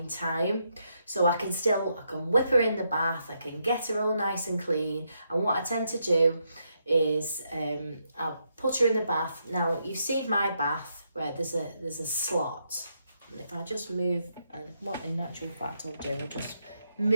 time. So I can whip her in the bath, I can get her all nice and clean, and what I tend to do is I'll put her in the bath. Now you've seen my bath where there's a slot, and if I just move, and what in actual fact I'll do, I'll just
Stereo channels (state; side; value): inverted; both; correlation -0.79